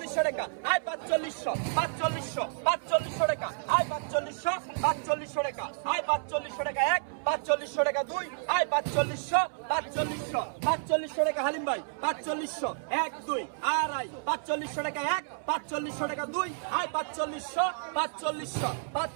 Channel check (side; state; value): left; silent; 58 dB below the other